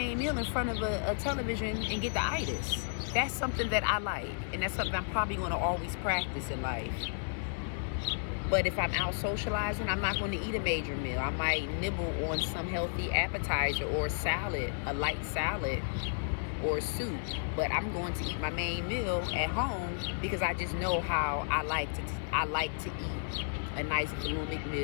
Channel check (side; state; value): right; silent; digital silence